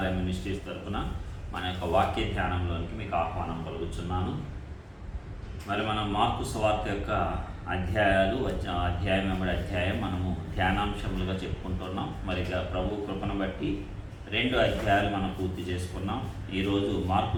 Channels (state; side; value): identical; both; correlation 1.00